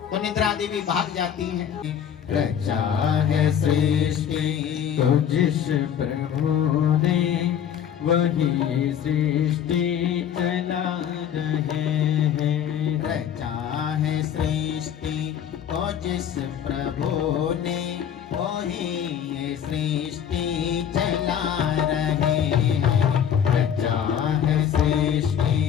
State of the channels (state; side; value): quieter; right; 8.9 dB